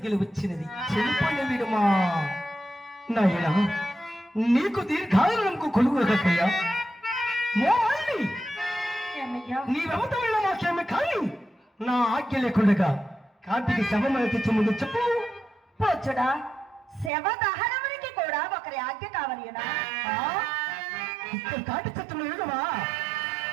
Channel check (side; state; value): left; drops out; at 17.1 s